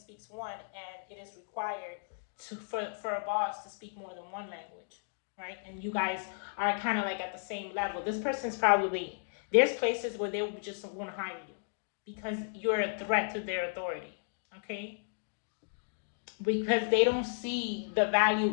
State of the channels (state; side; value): silent; right; digital silence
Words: 1, and it is required for a boss to speak more than 1 language, right? And you guys are kind of like at the same level. This person's probably, there's places where they just won't hire you because you're a threat to their authority, okay? Because they don't see the